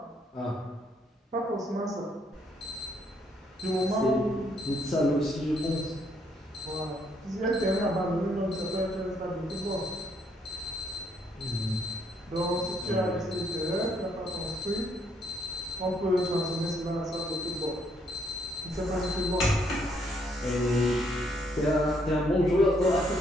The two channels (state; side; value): normal; both; correlation 0.70